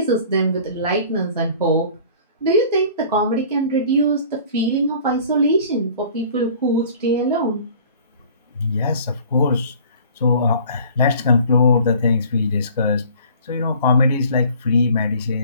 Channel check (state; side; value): inverted; both; correlation -0.48